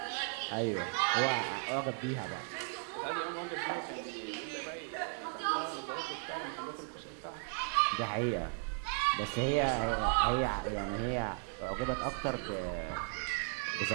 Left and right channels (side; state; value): left; silent; 54 dB below the other